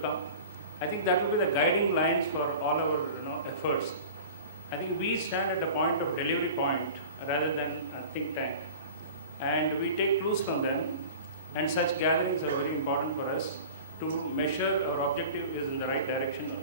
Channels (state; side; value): inverted; both; correlation -0.38